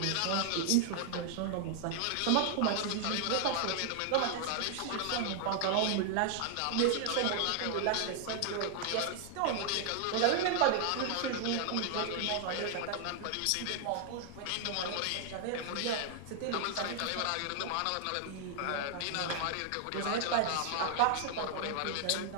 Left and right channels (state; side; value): different; both; correlation 0.00